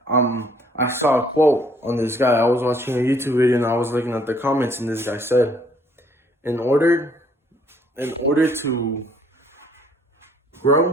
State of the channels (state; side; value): normal; both; correlation 0.63